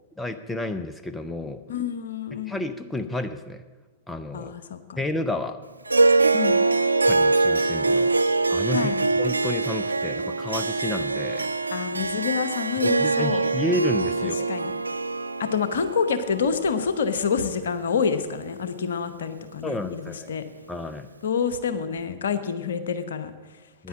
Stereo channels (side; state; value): both; inverted; correlation -0.61